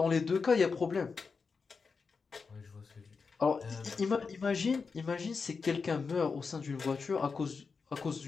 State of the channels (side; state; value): right; quieter; 5.0 dB